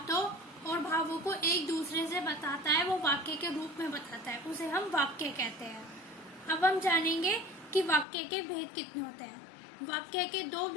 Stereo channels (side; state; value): right; drops out; at 8.1 s